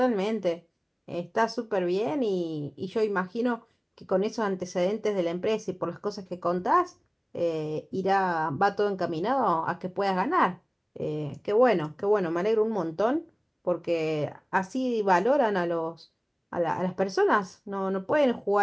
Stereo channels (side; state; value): both; identical; correlation 1.00